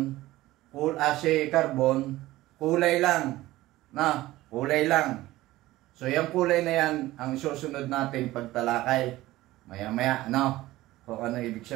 si Carbon, kulay lang. Kulay lang. So yung kulay na yan, ang susunod natin pagtalakay. Maya-maya, kung ano ibig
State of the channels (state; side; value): quieter; left; 17.1 dB